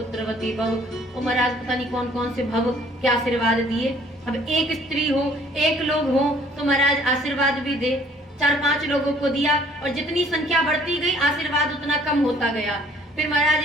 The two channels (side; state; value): both; normal; correlation 0.58